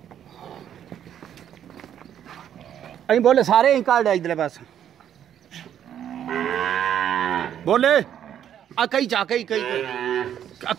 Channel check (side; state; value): left; quieter; 9.9 dB